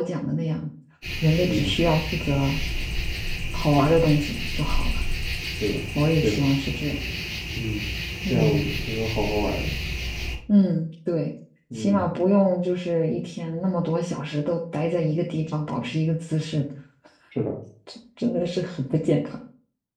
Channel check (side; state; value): both; identical; correlation 1.00